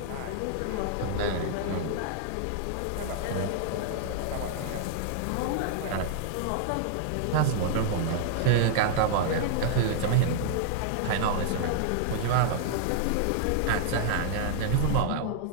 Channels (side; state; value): both; different; correlation -0.01